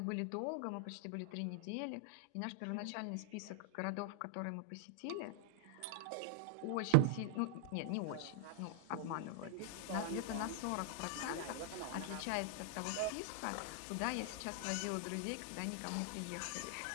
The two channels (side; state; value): both; different; correlation 0.00